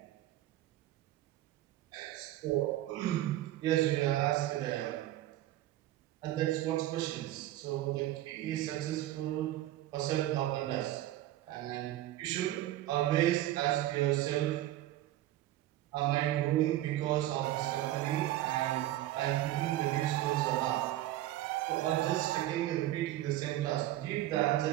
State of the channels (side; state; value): left; quieter; 14.6 dB